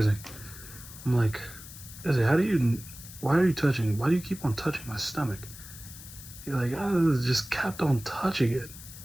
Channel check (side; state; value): left; noise; hiss, 15 dB below the sound